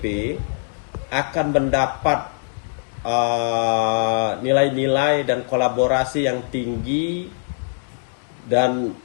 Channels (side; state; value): right; silent; digital silence